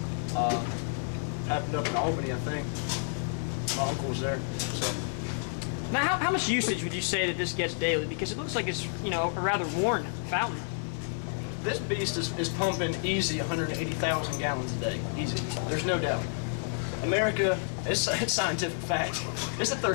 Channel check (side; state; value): right; silent; digital silence